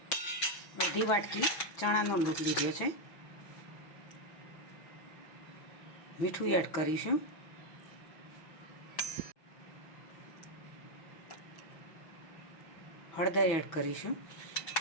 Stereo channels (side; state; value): right; late; 6.1 ms